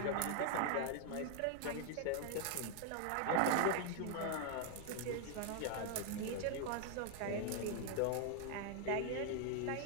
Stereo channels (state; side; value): different; both; correlation 0.00